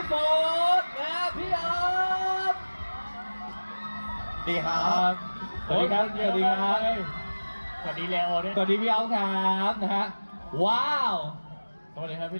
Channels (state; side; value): inverted; both; correlation -1.00